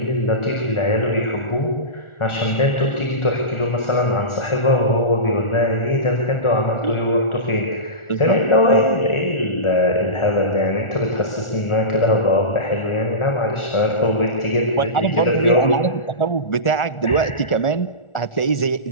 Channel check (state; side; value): late; right; 1.4 ms